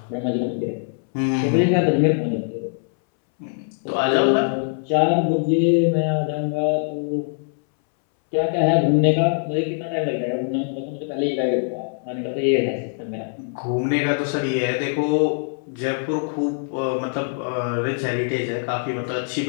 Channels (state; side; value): silent; right; 62 dB below the other